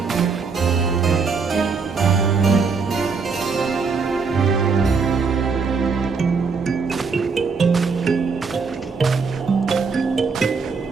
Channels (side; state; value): left; quieter; 5.0 dB